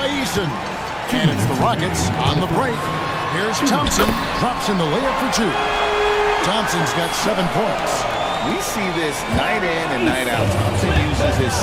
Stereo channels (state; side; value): identical; both; correlation 1.00